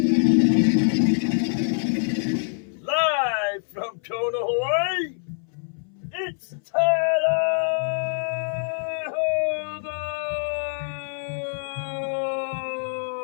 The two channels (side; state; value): right; silent; 61 dB below the other